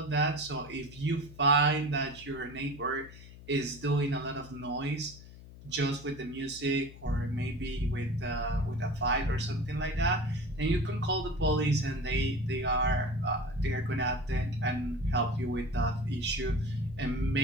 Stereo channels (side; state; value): left; noise; hum, 17 dB below the sound